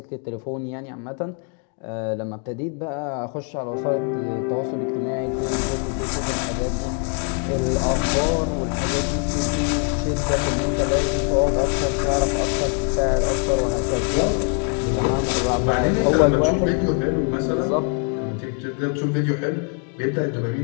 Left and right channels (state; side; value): quieter; right; 39.5 dB